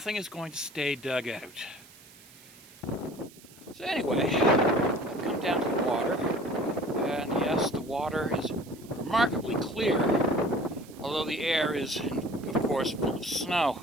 is going to stay dug out. So anyway, I've come down to the water, and yes, the water is remarkably clear, although the air is, of course, full of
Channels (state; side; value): noise; right; hiss, 23 dB below the sound